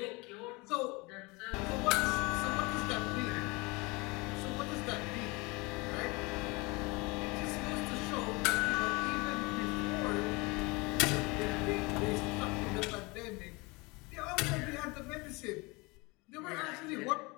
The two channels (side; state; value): right; quieter; 25.9 dB